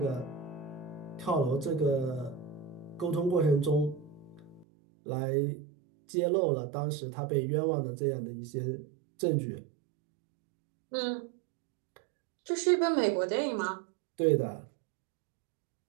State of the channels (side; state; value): left; drops out; at 4.7 s